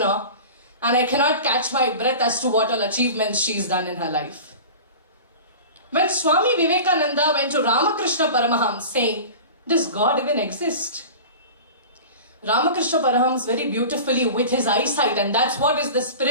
and I cannot catch my breath as to what all achievements she's done in her life. When Swami Vivekananda went to Ramakrishna Paramahams saying, does God even exist? Ramakrishna Paramahams very beautifully with his eyesight, and that's what is the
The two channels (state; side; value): inverted; both; correlation -0.35